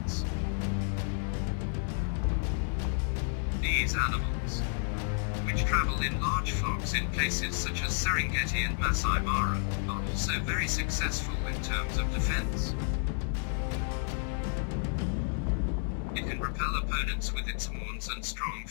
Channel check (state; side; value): silent; right; 57 dB below the other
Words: These animals, which travel in large flocks in places such as Serengeti and Masai Mara, are also very successful in terms of defense. It can repel opponents with its horns and strong